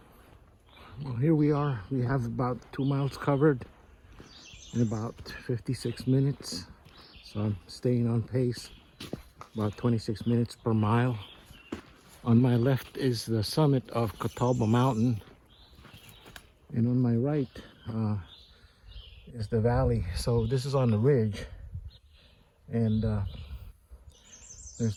Well, here we are. We have about 2 miles covered in about 56 minutes. So I'm staying on pace, about 26 minutes per mile. On my left is the summit of Catawba Mountain. And on my right is the valley. So this is on the ridge. And there's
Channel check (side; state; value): both; identical; correlation 1.00